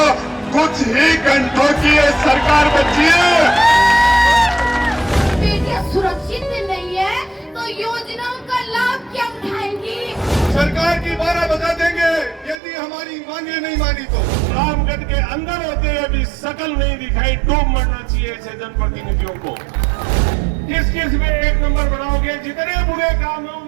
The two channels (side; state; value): left; drops out; at 12.6 s